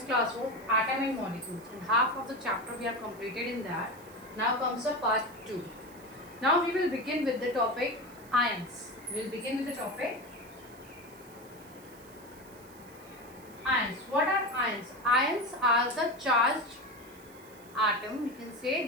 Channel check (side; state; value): right; noise; hiss, 23 dB below the sound